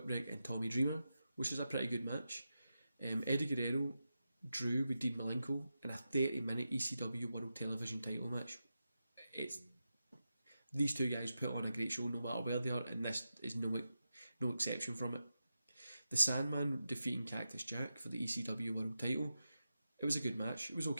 and Tommy Dreamer, which is a pretty good match. Eddie Guerrero drew with Dean Malenko in a 30-minute ECW World Television title match. These two guys put on a great show no matter where they are, and this is no exception from it. The Sandman defeating Cactus Jack for the ECW World title. It was a good match. It was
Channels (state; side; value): inverted; both; correlation -0.90